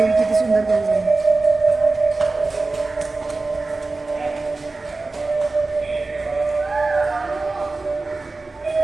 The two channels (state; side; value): quieter; left; 3.5 dB